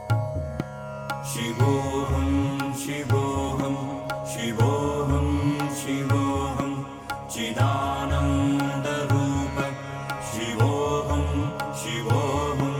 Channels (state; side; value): identical; both; correlation 1.00